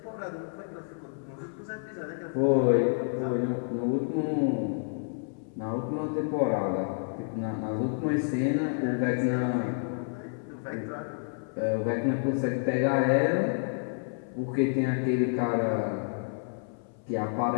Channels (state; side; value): silent; right; 58 dB below the other